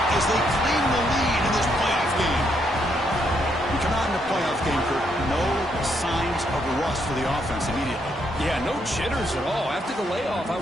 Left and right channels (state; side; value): normal; both; correlation 0.76